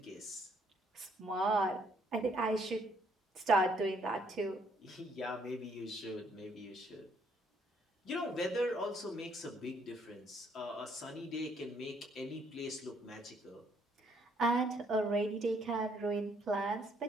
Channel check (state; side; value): normal; both; correlation 0.68